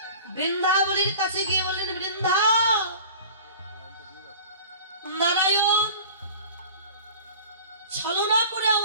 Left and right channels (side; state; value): both; inverted; correlation -0.42